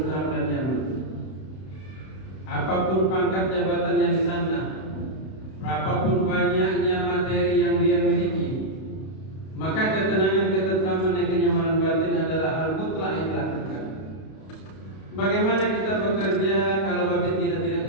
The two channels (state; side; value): late; right; 32 ms